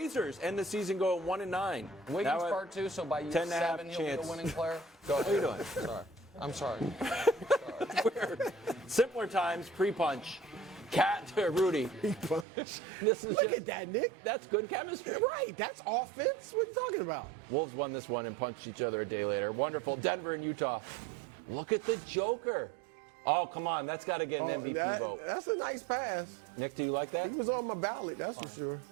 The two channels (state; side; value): drops out; left; at 12.5 s